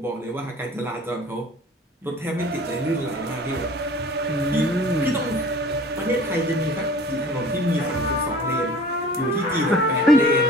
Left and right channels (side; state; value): both; normal; correlation 0.44